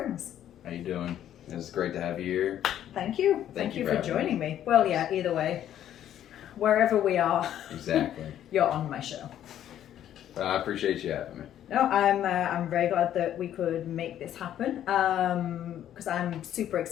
How you doing? It's great to have you here. Thank you. Thank you for for joining me. Well, yeah, either way, wherever we are, Exactly. you're on my show. I appreciate you having me. No, I'm very glad that we could make this happen because I'm super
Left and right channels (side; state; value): right; quieter; 11.1 dB